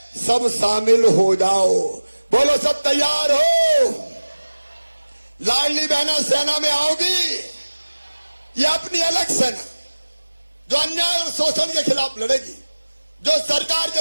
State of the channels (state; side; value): inverted; both; correlation -1.00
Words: सब शामिल हो जाओ। बोलो सब तैयार हो? लाडली बहना सेना में आओगी? ये अपनी अलग सेना जो अन्याय और शोषण के खिलाफ लड़ेगी, जो सरकार